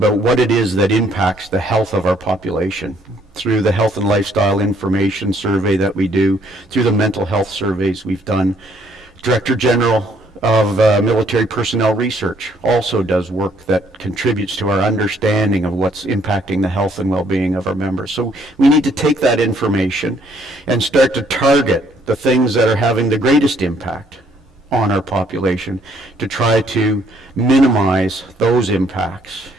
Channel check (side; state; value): both; normal; correlation 0.66